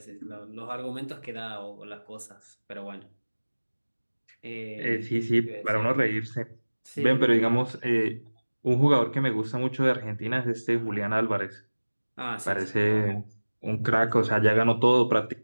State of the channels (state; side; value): inverted; both; correlation -1.00